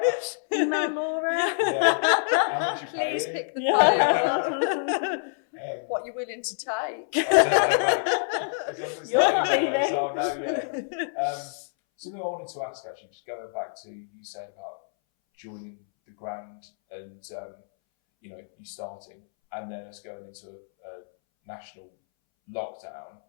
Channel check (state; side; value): silent; right; 60 dB below the other